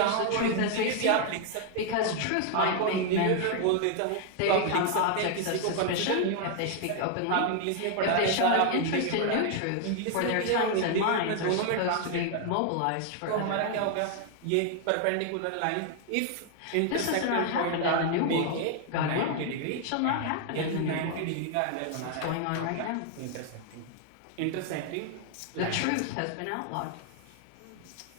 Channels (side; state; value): both; different; correlation 0.00